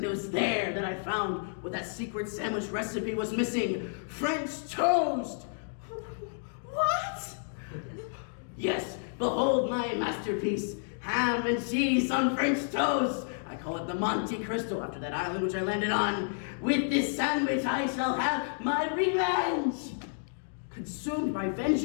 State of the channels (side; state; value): right; silent; digital silence